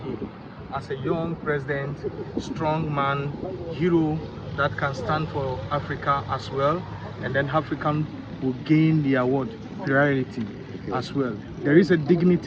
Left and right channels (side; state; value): both; identical; correlation 1.00